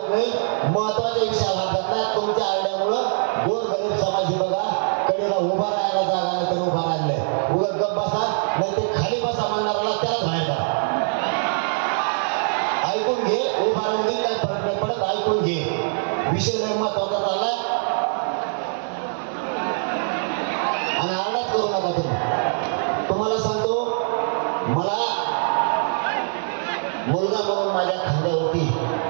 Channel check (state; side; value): silent; left; 61 dB below the other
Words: नाही. महत्वाच्या विषयाला हात घातला. तुमच्या आरड्यामुळं गोरगरीब समाजी बघा कडेला उभा राहायला जागा नाही तर उभा राहिलाय. उगा गप बसा नाही ते खाली बसा म्हणणाऱ्याला त्याला बाहेर करा. ऐकून घे. उभा राहून दे, काही फरक नाही पडत. ऐकून घे. विषय लय महत्वाचा चाललाय आणि आरडाच करू नका तुम्ही. तुम्हाला सांगतो, मला मुलगा म्हणून माझ्या खांद्यावरती